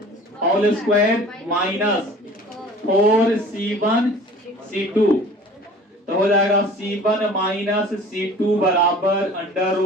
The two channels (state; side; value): normal; both; correlation 0.45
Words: whole square minus 4C1 C2, तो हो जाएगा C1 माइनस C2 बराबर under